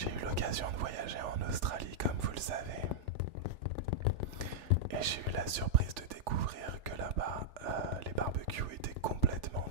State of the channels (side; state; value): left; late; 3.4 ms